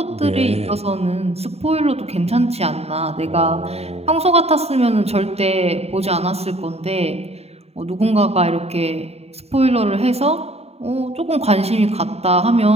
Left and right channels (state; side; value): late; left; 0.30 ms